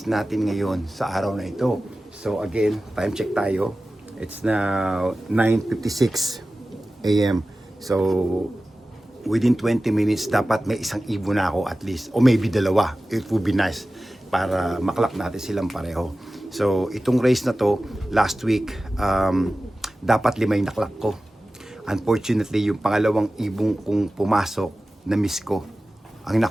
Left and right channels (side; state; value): both; normal; correlation 0.95